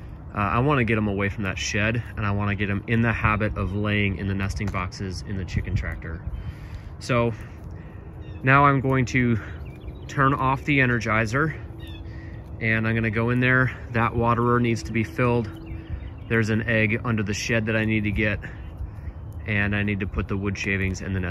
I want to get them away from that shed, and I want to get them in the habit of laying in the nesting boxes in the chicken tractor. So now I'm going to turn off the Energizer, and I'm going to go in there. That waterer needs to be filled. There's an egg under the shed that I need to get, and I need to put the wood shavings in the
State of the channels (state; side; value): identical; both; correlation 1.00